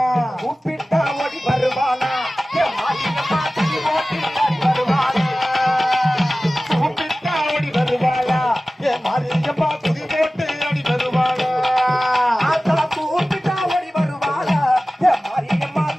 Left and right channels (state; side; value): normal; both; correlation 0.97